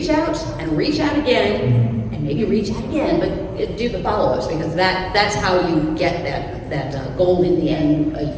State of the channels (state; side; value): identical; both; correlation 1.00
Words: out and reach out again, and maybe reach out again, but do the follow-ups, because that's how you get that goal in the end.